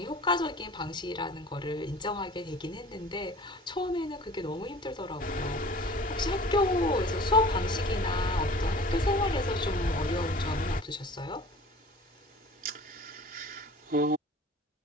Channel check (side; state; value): both; normal; correlation 0.44